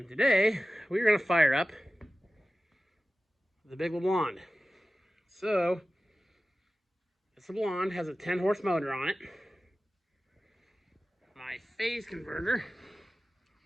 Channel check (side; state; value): both; normal; correlation 0.95